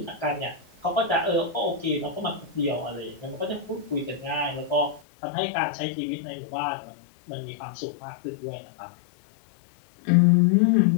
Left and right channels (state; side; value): drops out; right; at 5.0 s